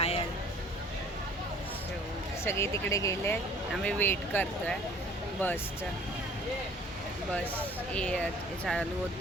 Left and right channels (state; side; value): normal; both; correlation 0.52